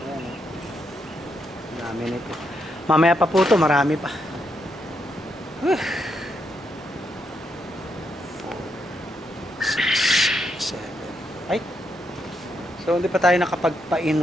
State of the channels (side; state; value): both; normal; correlation 0.80